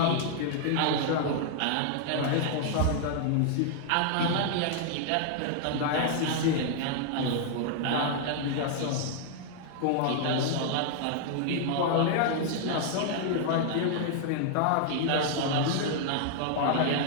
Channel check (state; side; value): different; both; correlation -0.01